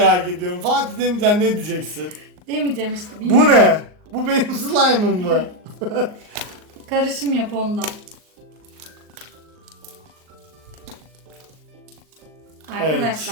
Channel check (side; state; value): left; late; 39 ms